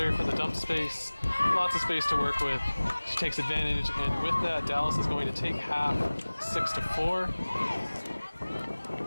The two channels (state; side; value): inverted; both; correlation -1.00